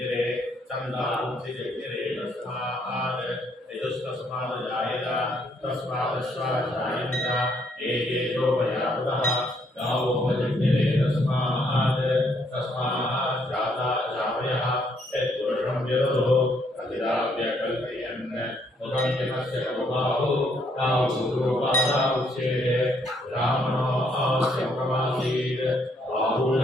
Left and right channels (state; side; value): normal; both; correlation 0.70